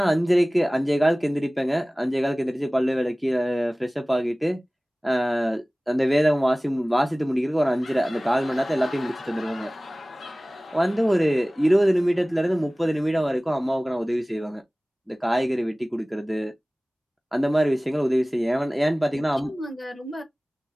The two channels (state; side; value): normal; both; correlation 0.98